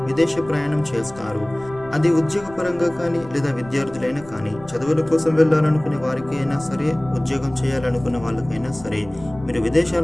విదేశీ ప్రయాణం చేస్తారు. అది ఉద్యోగపరంగా కానీ లేదా విద్యార్థులైనా కానీ, చదువుల కోసం వెళ్ళాలనుకునే వారికి అయినా సరే, ఉద్యోగం చేయాలనుకునే వాళ్ళకైనా సరే మీరు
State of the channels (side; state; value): left; noise; rumble, 20 dB below the sound